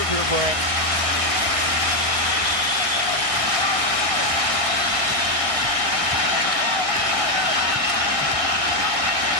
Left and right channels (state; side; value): late; left; 1.6 ms